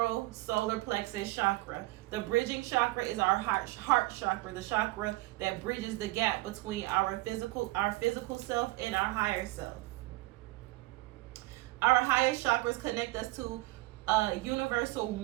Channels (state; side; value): quieter; left; 20.6 dB